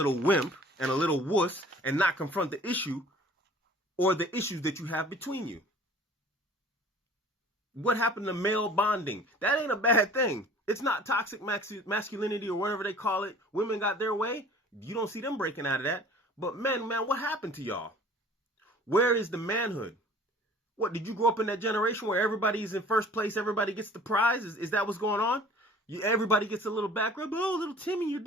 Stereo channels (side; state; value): both; normal; correlation 0.48